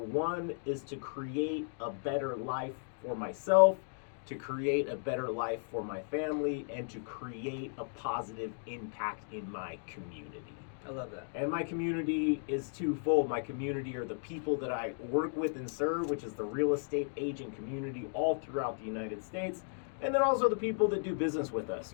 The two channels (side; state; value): right; silent; digital silence